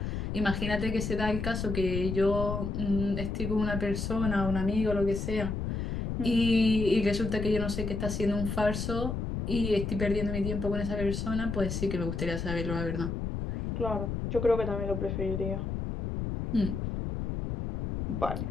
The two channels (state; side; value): noise; left; rumble, 3 dB below the sound